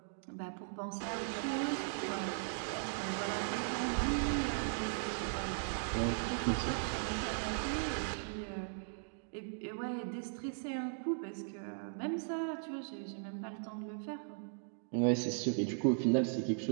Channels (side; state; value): left; silent; digital silence